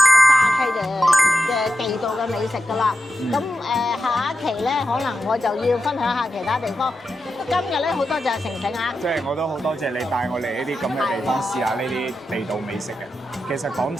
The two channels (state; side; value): normal; both; correlation 0.89